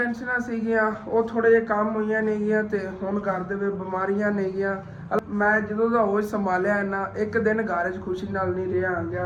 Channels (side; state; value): both; identical; correlation 1.00